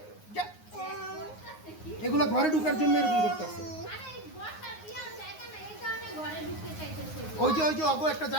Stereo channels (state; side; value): late; right; 9.6 ms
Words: এগুলো ঘরে ঢুকার জন্য এরকম করতেছে। ওই যে অগো একটা